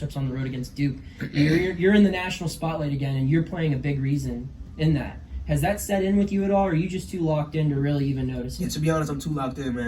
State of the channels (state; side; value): identical; both; correlation 1.00